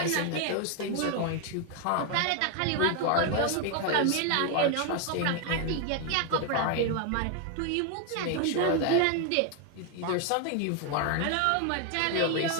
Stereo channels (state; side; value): different; both; correlation 0.01